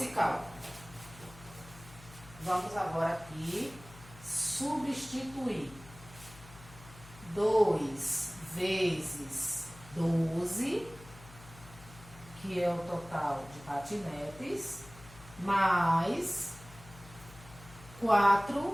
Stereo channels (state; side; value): noise; left; hum, 19 dB below the sound